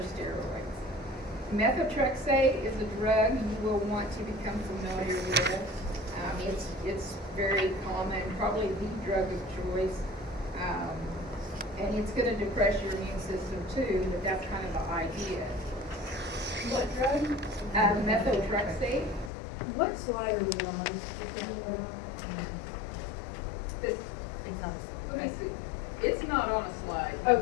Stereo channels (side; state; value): right; drops out; at 19.3 s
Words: steroids. Methotrexate is a drug you will want to become familiar with. It's very common, probably the drug of choice. And it's going to depress your immune system too, but that's kind of the idea. What drug? Methotrexate. What slide are we on? This, let me see. It's not on a slide.